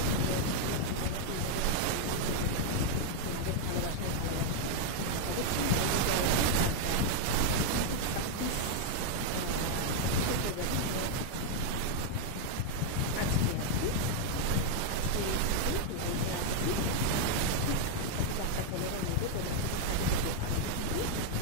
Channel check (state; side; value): different; both; correlation 0.00